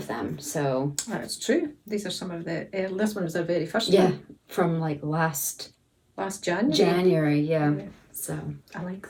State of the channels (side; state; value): both; identical; correlation 1.00